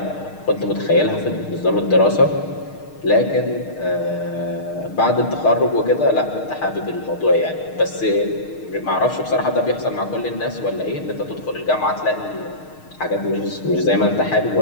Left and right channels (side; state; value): right; late; 6.5 ms